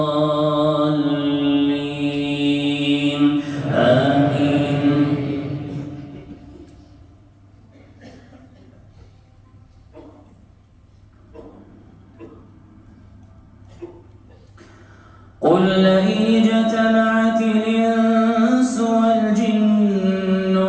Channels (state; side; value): identical; both; correlation 1.00